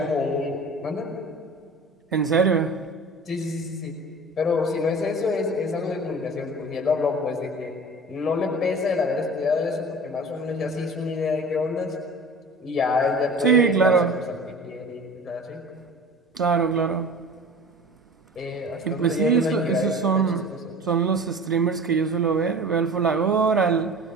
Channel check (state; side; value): normal; both; correlation 0.39